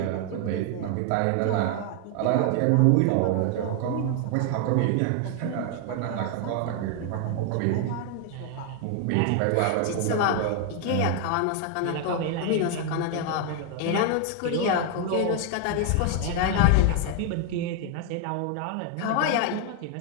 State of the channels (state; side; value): different; both; correlation 0.01